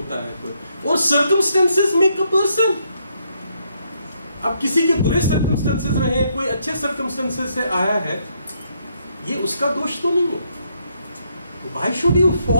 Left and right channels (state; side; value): inverted; both; correlation -0.74